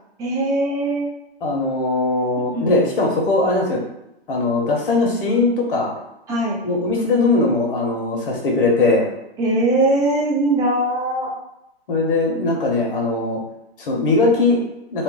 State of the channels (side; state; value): both; normal; correlation 0.11